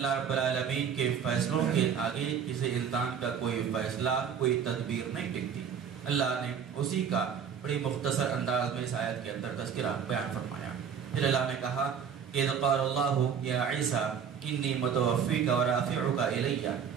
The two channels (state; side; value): quieter; left; 7.3 dB